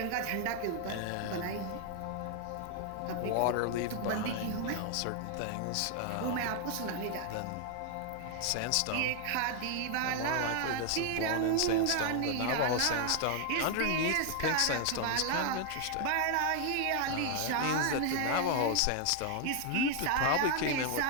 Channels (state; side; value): different; both; correlation 0.00